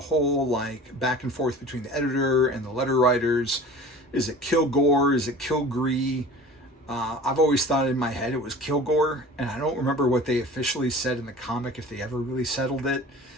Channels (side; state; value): both; normal; correlation 0.41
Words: whole back and forth between the editor and the letter writers. Is it Kilgore? Is it Kilgree? I've always thought in my head it was Kilgore, and I don't remember what they officially said in the comic, if they ever really settled it.